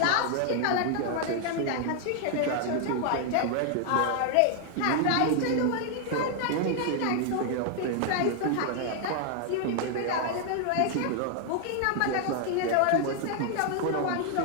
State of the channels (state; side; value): different; both; correlation 0.00